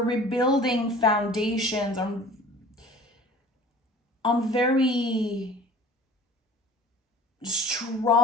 rebuilding foundations on very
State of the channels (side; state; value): both; normal; correlation 0.45